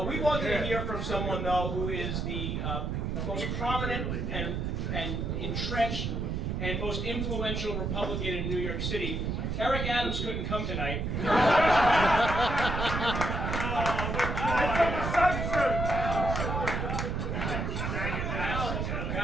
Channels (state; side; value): noise; right; rumble, 1 dB below the sound